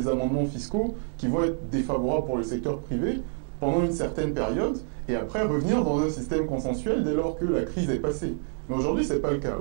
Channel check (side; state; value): left; silent; 56 dB below the other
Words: amendements fiscaux qui vont être défavorables pour le secteur privé pendant une certaine période, et après revenir dans un système consensuel dès lors que la crise est passée. Mais aujourd'hui, ce n'est pas le cas.